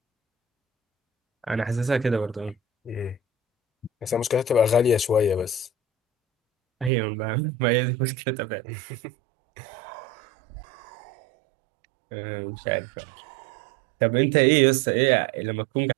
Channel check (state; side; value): drops out; left; at 6.9 s